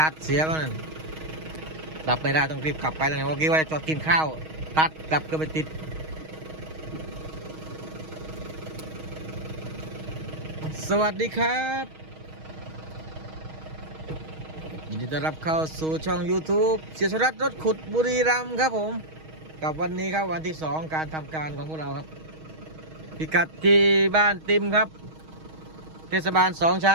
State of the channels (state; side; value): late; left; 6.3 ms